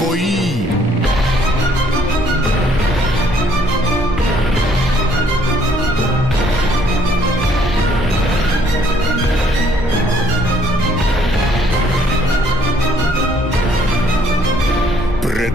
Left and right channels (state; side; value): normal; both; correlation 0.64